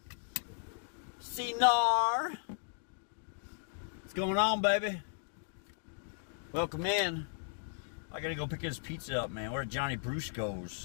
Cinar. What's going on, baby? Welcome in. I gotta go pick his pizza up, man. We're at Johnny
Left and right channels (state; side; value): silent; right; digital silence